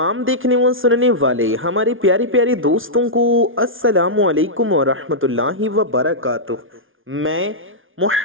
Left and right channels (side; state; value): left; late; 0.58 ms